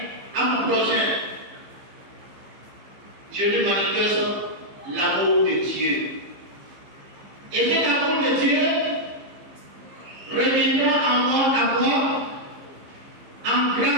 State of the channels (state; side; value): late; left; 15 ms